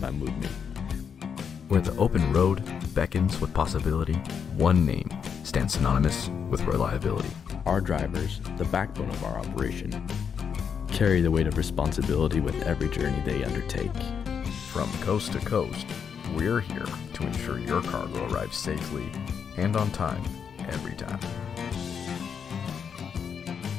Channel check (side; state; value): right; quieter; 7.0 dB